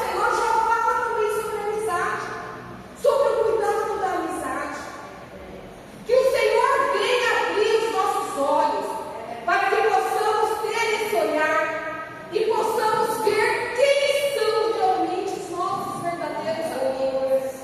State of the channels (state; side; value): identical; both; correlation 1.00